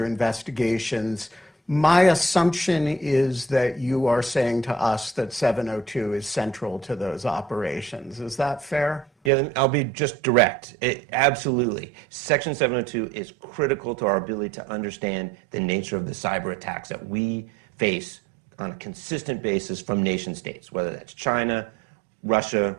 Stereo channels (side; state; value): left; drops out; at 9.3 s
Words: investigations. My assumption is that you are saying to us that 702 is central to those operations. Is that fair? Yeah, I'll be just direct. Absolutely. Section 702 is critical to our ability to understand the nature of the cyber attacks that we face on a consistent basis from nation states, whether that's China, Russia,